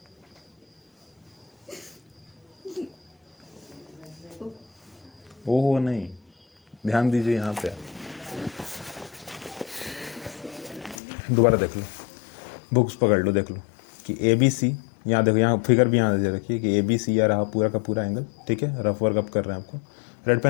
ओहो नहीं, ध्यान दीजिए यहाँ पे, दोबारा देख लो, बुक्स पकड़ लो, देख लो कि ए बी सी, यहाँ देखो, यहाँ फिगर भी यहाँ दे रखिए कि ए बी सी या रहा पूरा का पूरा एंगल, ठीक है। रफ वर्क अप कर रहे हैं आपको, रेड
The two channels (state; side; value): drops out; right; at 11.0 s